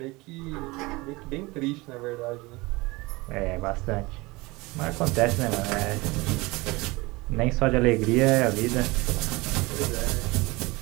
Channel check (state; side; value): quieter; left; 23.1 dB